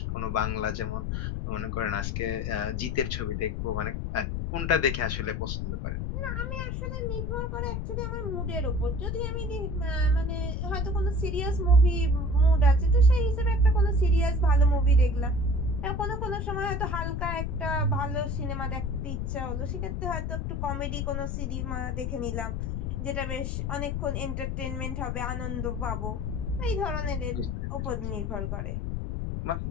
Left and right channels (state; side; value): noise; left; rumble, 2 dB below the sound